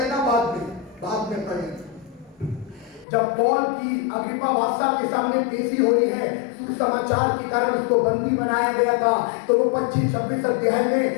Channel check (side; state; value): right; drops out; at 3.1 s